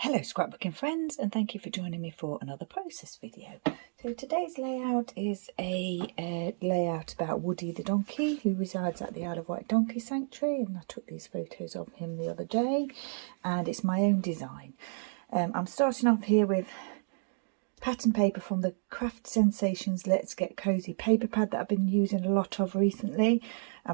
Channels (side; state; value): left; silent; digital silence